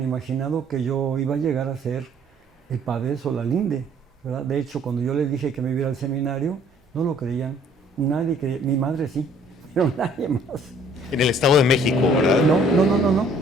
imaginado que yo iba a llegar a ser el padre de Solalinde, ¿verdad? De hecho, cuando yo les dije que me iba a ir al seminario, no lo creían. Nadie creía. Mi madre sí, pero nadie más. En el Estado de México, ¿verdad? No.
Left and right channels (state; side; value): normal; both; correlation 0.58